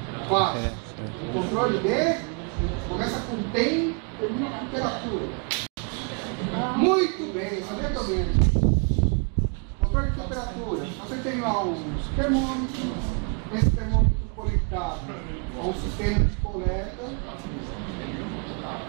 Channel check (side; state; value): left; quieter; 38.6 dB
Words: classe. Um controle de começa com tem, termina com temperatura. Muito bem, sabia também. Controle de temperatura. Você tem lá um termômetro, esse termômetro conectado a um sistema de coleta.